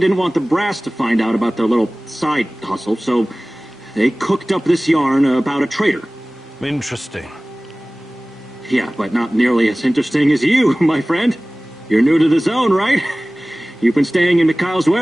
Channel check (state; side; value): normal; both; correlation 0.98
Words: want the brass to find out about their little side hustle, so they cooked up this yarn about a traitor. Interesting. Yeah, but not nearly as interesting as you, my friend. You're new to the zone, right? You've been staying in Mikhail's